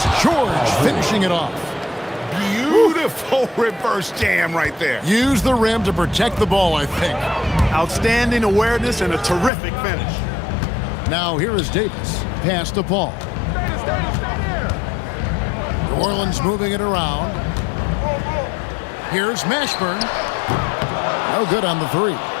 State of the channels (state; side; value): drops out; right; at 9.5 s